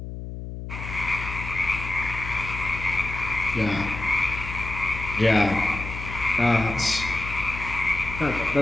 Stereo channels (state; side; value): noise; left; hum, 8 dB below the sound